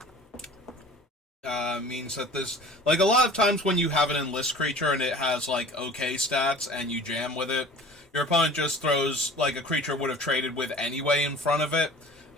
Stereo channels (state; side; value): normal; both; correlation 0.44